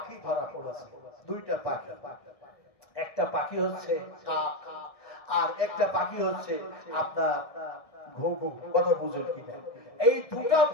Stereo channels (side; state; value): right; late; 1.7 ms